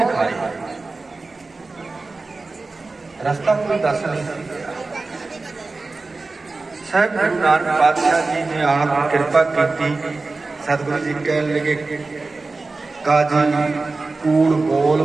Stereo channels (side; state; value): left; quieter; 3.6 dB